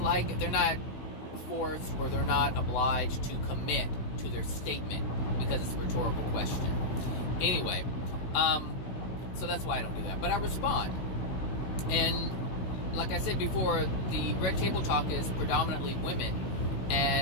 they're not forced or they're not obliged to commit to their statement because it's a rhetorical question. Anyway, so that's why I don't do that. But I respond. And like I said before, the Red Table Talk is predominantly women.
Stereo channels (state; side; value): late; right; 16 ms